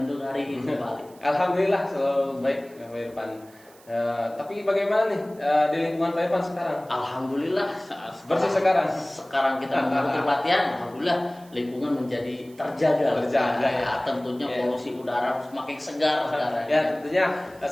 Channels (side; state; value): right; noise; hiss, 26 dB below the sound